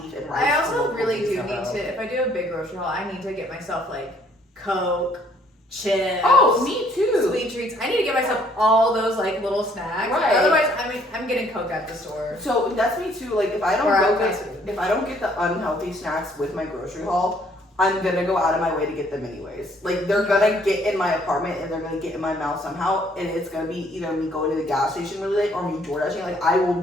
and rice. I also really do in a need row. to, if I do a big grocery haul, I need to get myself like Coke, chips. Oh, me too. Sweet treats. I need to get myself all those like little snacks. Right. Otherwise, I'm getting Coke at the store. So that's me too. Like if I don't get the unhealthy snacks with my grocery haul, I'm gonna go out of my way to get them anyways. Like they're gonna get in my apartment and they're gonna get in my mouth somehow, and it's gonna be either me going to the gas station really late or me door dashing. Like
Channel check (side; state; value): both; normal; correlation 0.63